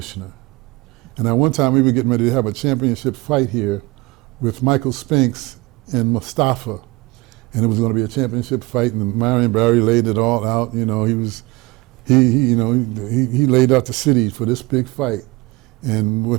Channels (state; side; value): quieter; left; 22.7 dB